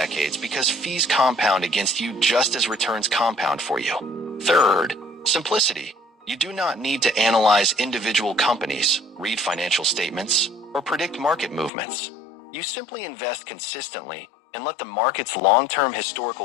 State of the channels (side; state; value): right; drops out; at 11.7 s